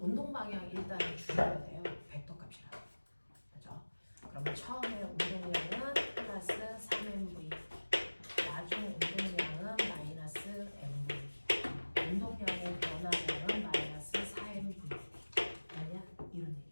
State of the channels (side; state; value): both; inverted; correlation -1.00